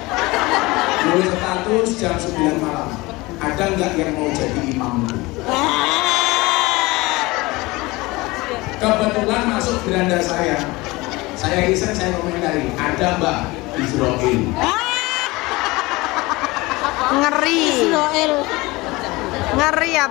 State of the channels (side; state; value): right; quieter; 22.0 dB